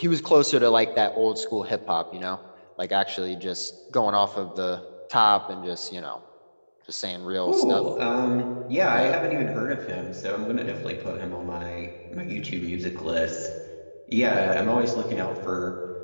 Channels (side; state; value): both; inverted; correlation -1.00